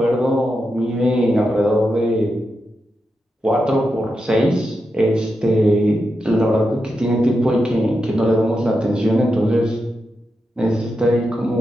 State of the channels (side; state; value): both; normal; correlation 0.87